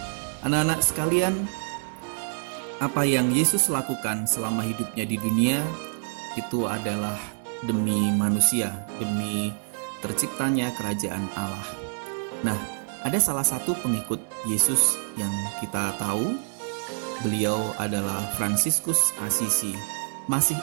Anak-anak sekalian, apa yang Yesus lakukan selama hidupnya di dunia itu adalah demi manusia, demi terciptanya kerajaan Allah. Nah, ada salah satu pengikut Yesus yang kita tahu, beliau adalah Fransiskus Assisi. Masih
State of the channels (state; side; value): silent; left; 60 dB below the other